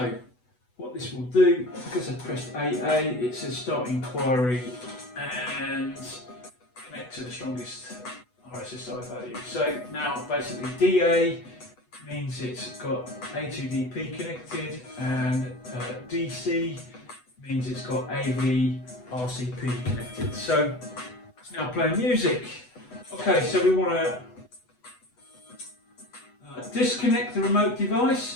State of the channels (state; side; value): late; right; 8.1 ms